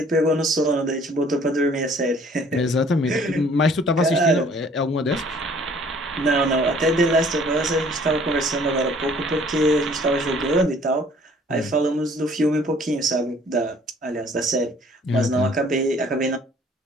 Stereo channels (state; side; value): normal; both; correlation 0.56